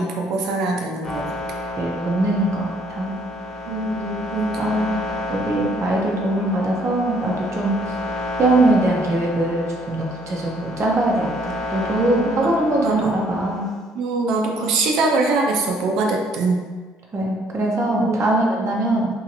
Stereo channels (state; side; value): normal; both; correlation 0.64